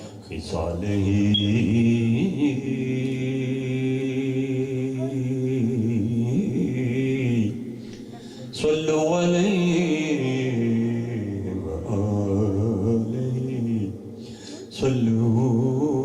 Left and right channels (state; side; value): identical; both; correlation 1.00